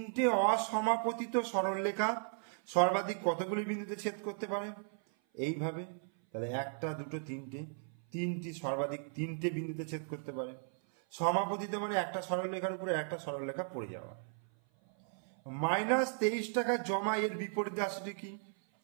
অসমাপতিত সরলরেখা সর্বাধিক কতগুলি বিন্দুতে ছেদ করতে পারে? এইভাবে। তাহলে 1, 2, 3টে, 3টি সর্বাধিক 3টে বিন্দুতে ছেদ করতে পারে। সমাপতিত মানে একটা সরলরেখার উপরে একটা সরলরেখা পড়ে যাওয়া। -23 টাকা জমা, এর বিপরীত রাশিটি কি?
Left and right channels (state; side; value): silent; left; 54 dB below the other